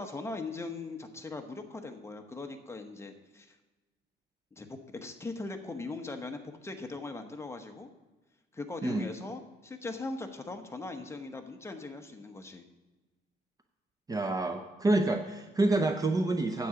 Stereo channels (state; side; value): normal; both; correlation 0.80